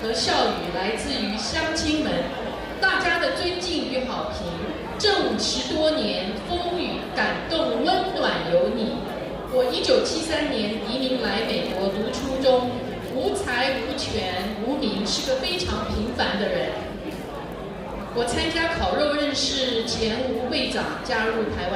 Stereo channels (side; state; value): both; identical; correlation 1.00